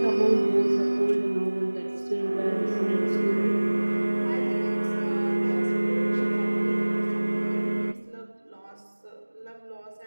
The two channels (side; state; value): both; inverted; correlation -1.00